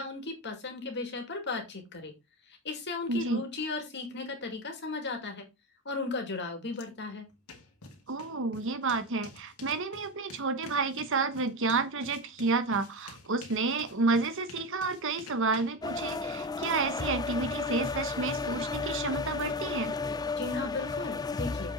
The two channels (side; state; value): both; normal; correlation 0.19